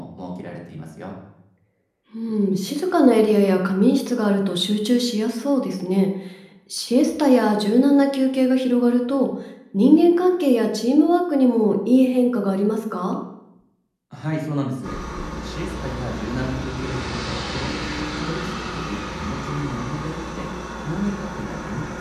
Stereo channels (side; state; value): both; identical; correlation 1.00